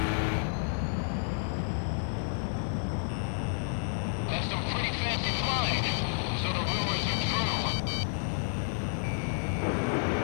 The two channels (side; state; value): right; silent; digital silence